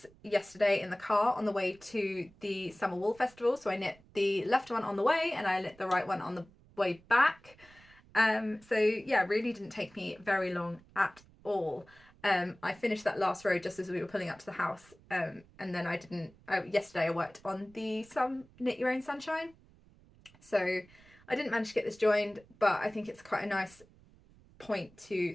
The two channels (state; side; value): noise; right; rumble, 26 dB below the sound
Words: yesterday in the car on the way to the Summer Wool Festival. So I knit the left one on the way and I knit the right one on the way back. So yeah, really didn't take me very long at all. I finished that last row just as we were pulling up to the house, and then yesterday I worked on the Knit Your Own Sunshine, so I didn't manage to get this joined, but I think it's quite a nice point to